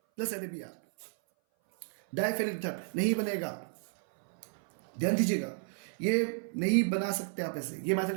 plus NaBr, diphenyl ether नहीं बनेगा। ध्यान दीजिएगा, ये नहीं बना सकते आप ऐसे, ये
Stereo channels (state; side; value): silent; left; 56 dB below the other